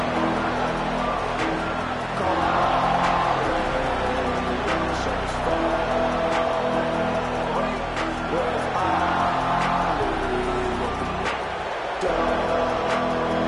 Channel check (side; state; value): both; identical; correlation 1.00